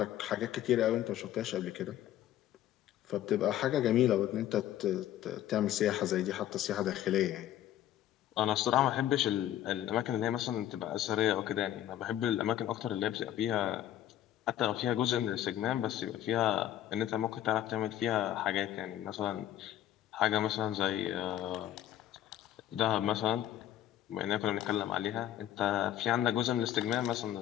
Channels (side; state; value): right; quieter; 12.3 dB